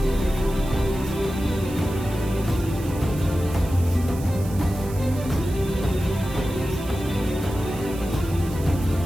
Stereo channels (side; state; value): right; noise; hiss, 17 dB below the sound